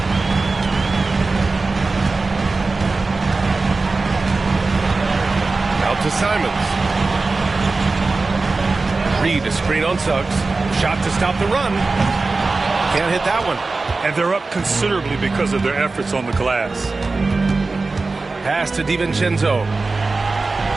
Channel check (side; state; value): left; quieter; 3.7 dB